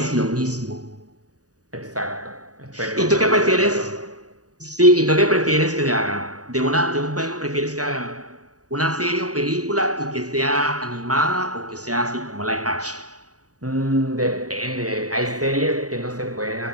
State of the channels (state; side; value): late; left; 0.67 ms